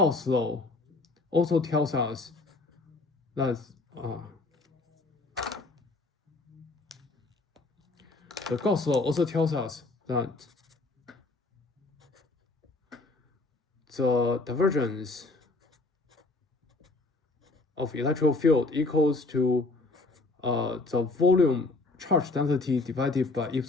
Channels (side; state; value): right; quieter; 3.3 dB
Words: law also tells us that the Gauss law also tells us that the divergence of electric field equals to the volume charge density divided by